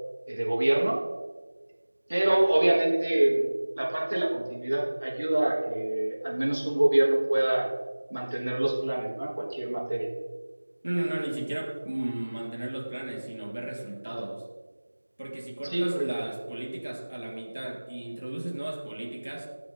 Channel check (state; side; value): inverted; both; correlation -1.00